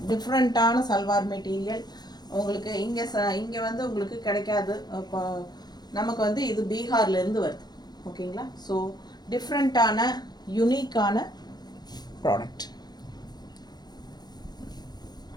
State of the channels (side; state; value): right; late; 0.20 ms